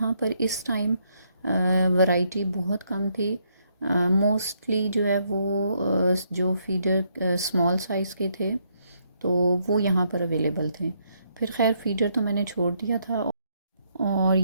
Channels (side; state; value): both; inverted; correlation -0.74